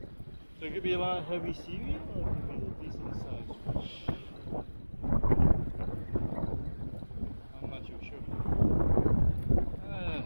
So it could be a lot of heavy seaweed or it could be a decent sized fish. I'm not too sure.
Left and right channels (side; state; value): both; inverted; correlation -1.00